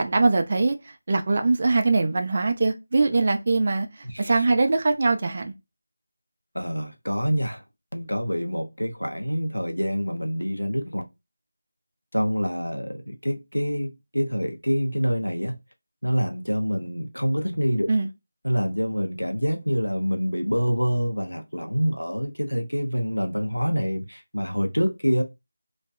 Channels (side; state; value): both; inverted; correlation -0.97